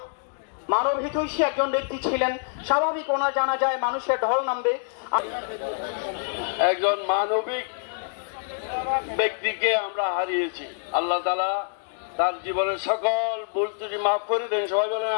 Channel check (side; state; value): right; silent; digital silence